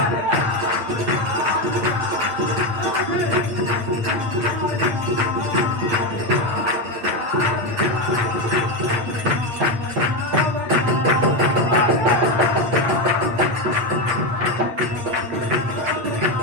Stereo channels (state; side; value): late; left; 8.5 ms